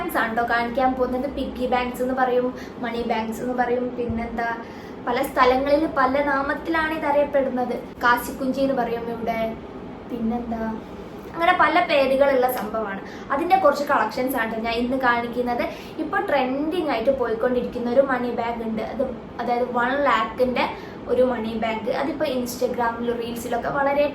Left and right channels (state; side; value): identical; both; correlation 1.00